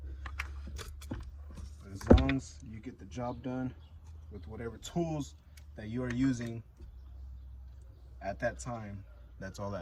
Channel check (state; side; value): identical; both; correlation 1.00